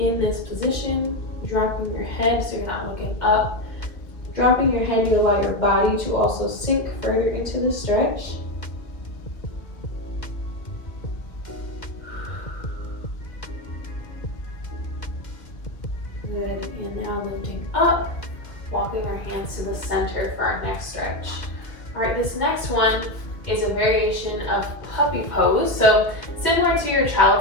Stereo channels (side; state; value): right; late; 2.0 ms